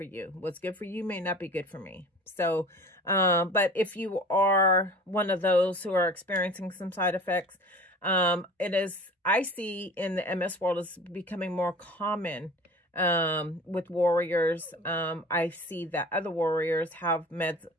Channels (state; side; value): normal; both; correlation 0.41